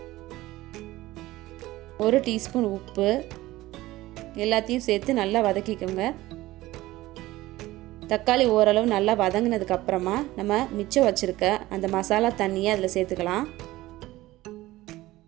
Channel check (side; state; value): left; quieter; 17.5 dB